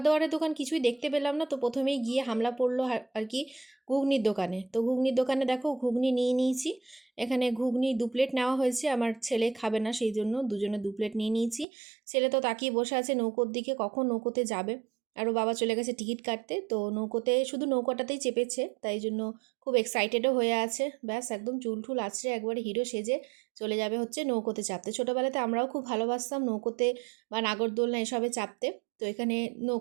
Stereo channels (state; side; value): drops out; left; at 11.7 s